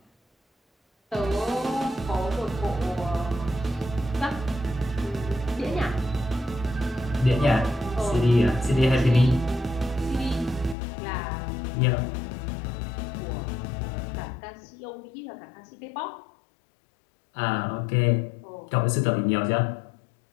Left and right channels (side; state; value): right; drops out; at 10.8 s